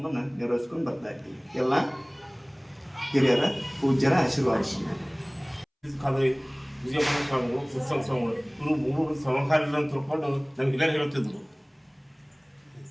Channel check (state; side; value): identical; both; correlation 1.00